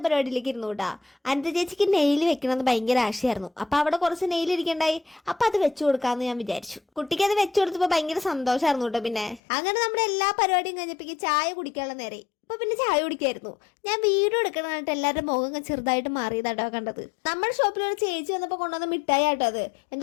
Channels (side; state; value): right; drops out; at 9.4 s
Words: പരിപാടിയിലേക്ക് ഇരുന്നു കേട്ടാ. അനന്ത ചേച്ചിക്ക് നെയിൽ വെക്കണമെന്ന് ഭയങ്കര ആശയായിരുന്നു. അപ്പൊ അവിടെ കുറച്ച് നെയിൽ ഇരിക്കണ്ടായി. അപ്പൊ അത് വെച്ചു കൊടുക്കാന്ന് ഞാൻ വിചാരിച്ചു. കുട്ടിക്ക് അത് വെച്ചു കൊടുത്തപ്പോ ഭയങ്കര സന്തോഷമായിരുന്നു കേട്ടോ. പിന്നെ അങ്ങനെ നമ്മുടെ എല്ലാ പരിപാടിയും കഴിഞ്ഞപ്പോ ചായ കുടിക്കാനുള്ള നേരെ. അപ്പൊ പിന്നെ ചായ കുടിക്കായിരുന്നു. ഞാൻ വീഡിയോ എടുക്കണമായിട്ട് എല്ലാവരുടെ മുഖം ചെറുതായിട്ട് മാറിയതാട്ടോ കണ്ടത്. നമ്മുടെ ഷോപ്പിൽ ഒരു ചേച്ചി വന്നപ്പോൾ കൊണ്ടുവന്ന മിഠായി ആട്ടോ അത്.